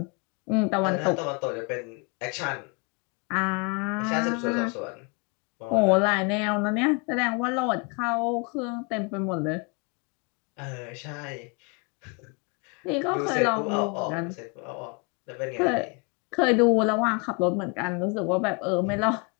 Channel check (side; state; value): right; quieter; 32.6 dB